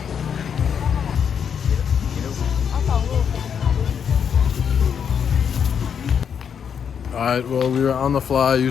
Alright, well, we were on the fly.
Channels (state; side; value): quieter; right; 7.5 dB